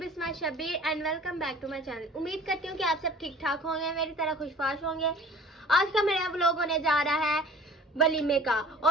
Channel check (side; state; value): both; normal; correlation 0.46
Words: Shabir and welcome back to my channel. उम्मीद करती हूँ कि आप सब ठीक ठाक होंगे, मेरी तरह खुशबाश होंगे। आज का मेरा व्लॉग होने जा रहा है वलीमे का